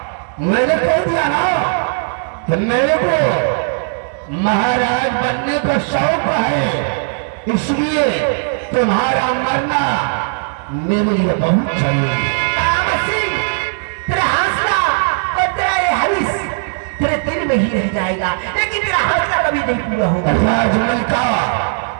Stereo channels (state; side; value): silent; left; digital silence